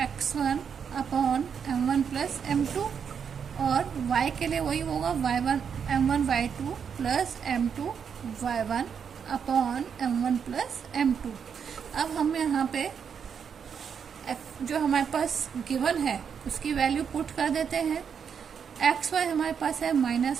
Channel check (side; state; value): left; quieter; 7.1 dB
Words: x1 upon m1 plus m2, और y के लिए वही होगा m1 y2 plus m2 y1 upon m1 plus m2। अब हम यहाँ पे जो हमारे पास गिवन है उसकी वैल्यू पुट कर देते हैं। एक्स वाई हमारे पास है